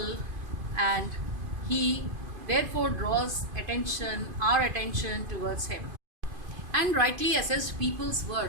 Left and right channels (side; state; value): left; late; 2.5 ms